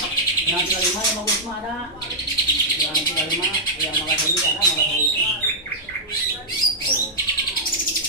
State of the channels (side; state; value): both; normal; correlation -0.08